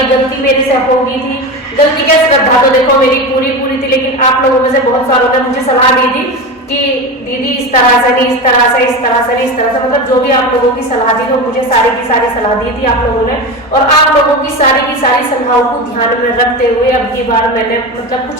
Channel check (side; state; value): both; normal; correlation 0.23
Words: गलती मेरे से हो गई थी। गलती क्या, श्रद्धा तो देखो मेरी पूरी थी, लेकिन आप लोगों में से बहुत सारों ने मुझे सलाह दी थी कि दीदी इस तरह से नहीं, इस तरह से, इस तरह से नहीं, इस तरह से, मतलब जो भी आप लोगों की सलाह दी तो मुझे सारी की सारी सलाह दी थी आप लोगों ने। और आप लोगों की सारी सलाहों को ध्यान में रखते हुए अब की बार मैंने मतलब